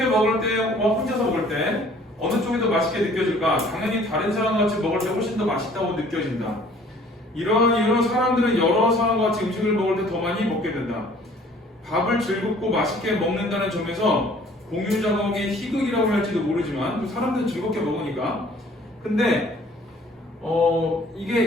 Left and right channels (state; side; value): normal; both; correlation 0.54